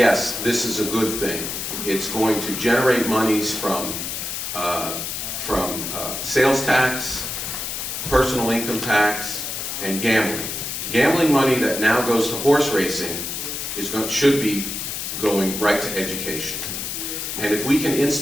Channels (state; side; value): noise; left; hiss, 4 dB below the sound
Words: this is a good thing. It's going to generate monies from sales tax, personal income tax, and gambling. Gambling money that now goes to horse racing should be going right to education. And if we can